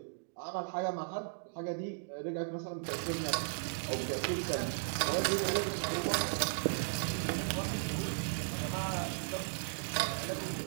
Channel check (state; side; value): silent; left; digital silence